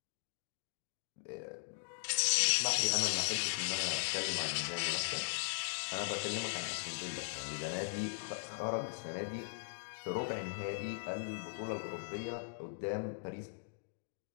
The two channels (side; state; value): right; silent; digital silence